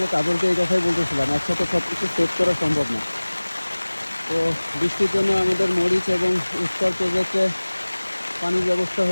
তাদেরকে এই কথাই বলতেছিলাম, একসাথে সব কিছু সেভ করা সম্ভব না। তো বৃষ্টির জন্য আমাদের মরিচ এবং স্টার প্রজেক্টে পানির ব্যবস্থা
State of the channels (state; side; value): inverted; both; correlation -1.00